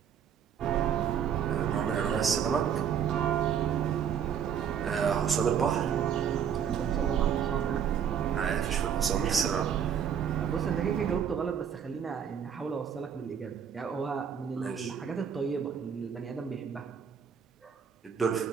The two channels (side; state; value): left; quieter; 8.1 dB